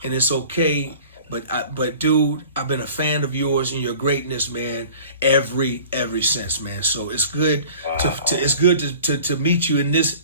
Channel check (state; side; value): inverted; both; correlation -0.45